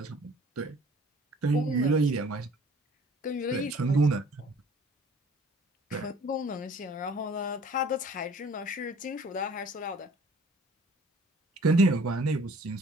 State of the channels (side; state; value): both; normal; correlation 0.53